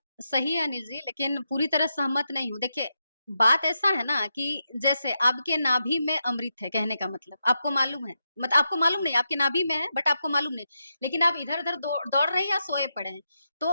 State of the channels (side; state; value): both; inverted; correlation -0.85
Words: सही है अनिल जी, लेकिन पूरी तरह सहमत नहीं हूँ। देखिए, बात ऐसा है ना कि जैसे आपके नाभि में अमृत है, कहने का मतलब, आपको मालूम है, आपको मालूम नहीं, आपके नाभि में है, बट आपको मालूम नहीं, लेकिन आप इधर-उधर दौड़ रहे हैं या सोए पड़े हैं। तो